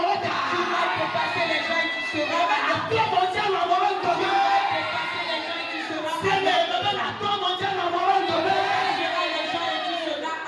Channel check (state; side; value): identical; both; correlation 1.00